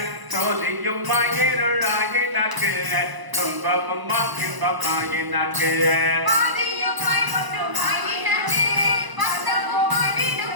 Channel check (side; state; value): left; late; 1.0 ms